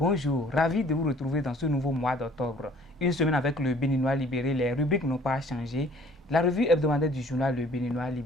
Ravi de vous retrouver dans ce nouveau mois d'octobre. Une semaine avec le Béninois libéré, les rubriques n'ont pas changé. La revue hebdomadaire du journal Le Béninois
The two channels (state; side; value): normal; both; correlation 0.55